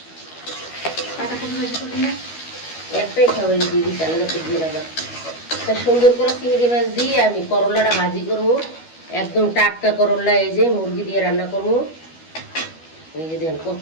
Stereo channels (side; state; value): right; late; 12 ms